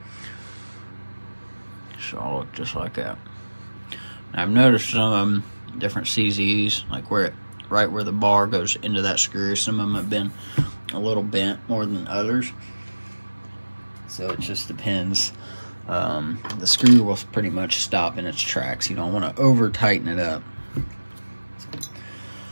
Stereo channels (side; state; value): both; inverted; correlation -1.00